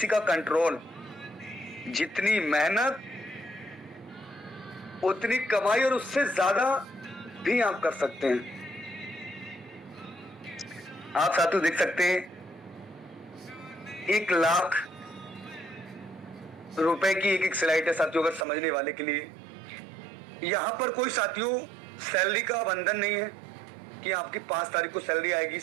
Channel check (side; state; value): left; drops out; at 18.4 s